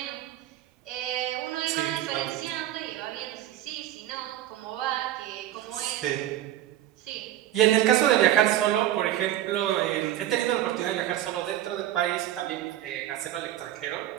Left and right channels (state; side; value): quieter; left; 13.0 dB